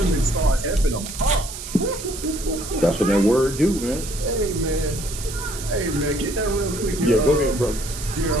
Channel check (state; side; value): noise; right; hiss, 10 dB below the sound